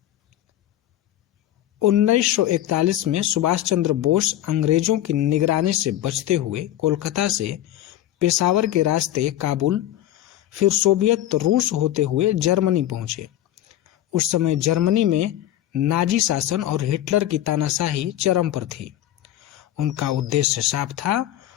1941 में सुभाष चंद्र बोस अंग्रेजों की निगरानी से बचते हुए कोलकाता से पेशावर के रास्ते काबुल, फिर सोवियत रूस होते हुए जर्मनी पहुंचे। उस समय जर्मनी में नाजी शासन और हिटलर की तानाशाही चरम पर थी। उनका उद्देश्य साफ था,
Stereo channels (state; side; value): quieter; right; 13.0 dB